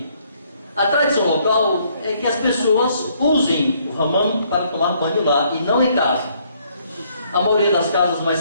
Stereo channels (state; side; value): inverted; both; correlation -0.67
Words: A tradição local é que as pessoas usem o hammam para tomar banho lá e não em casa. A maioria das casas mais